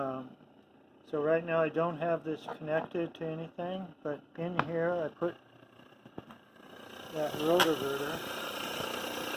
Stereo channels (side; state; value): both; identical; correlation 1.00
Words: right now I don't have this connected to anything, but in here I put that rotovertor